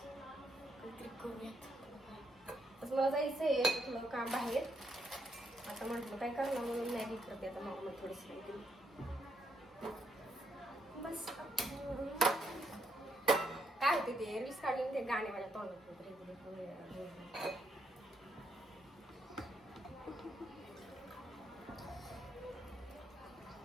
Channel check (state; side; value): normal; both; correlation 0.77